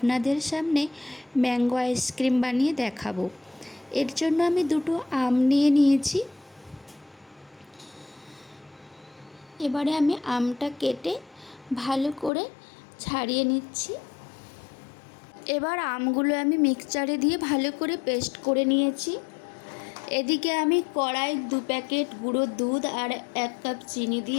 সামনে ম্যাঙ্গো আইসক্রিম বানিয়ে দেখাবো। এর জন্য আমি দুটো আম নিয়ে নিয়েছি। এবারে আমি আমটা কেটে ভালো করে ছাড়িয়ে নিচ্ছি। এবার আমগুলো আমি মিক্সচারে দিয়ে ভালো করে পেস্ট করে নিয়েছি। এদিকে আমি কড়াই 2 প্যাকেট গুঁড়ো দুধ আর 1 কাপ চিনি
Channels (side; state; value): right; drops out; at 12.3 s